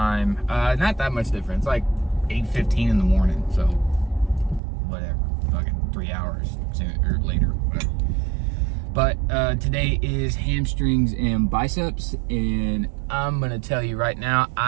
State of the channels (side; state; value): left; drops out; at 4.6 s